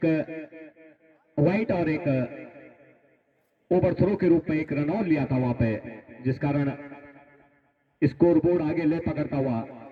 वाइट और एक ओवर थ्रो के रूप में 1 रन और लिया था वहां पे, जिस कारण स्कोर बोर्ड आगे ले पकड़ता हुआ।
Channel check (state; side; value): identical; both; correlation 1.00